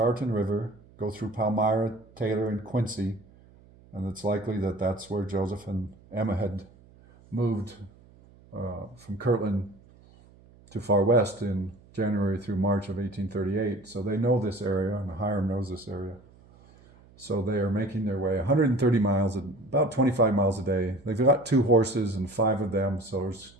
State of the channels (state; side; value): noise; right; hum, 26 dB below the sound